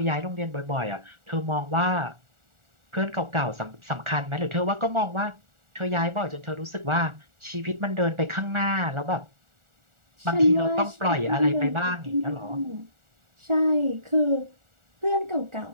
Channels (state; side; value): late; left; 1.4 ms